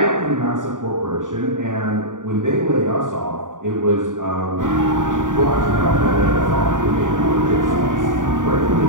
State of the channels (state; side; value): late; left; 0.88 ms